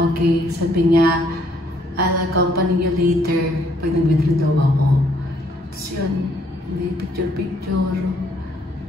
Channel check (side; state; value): both; normal; correlation 0.67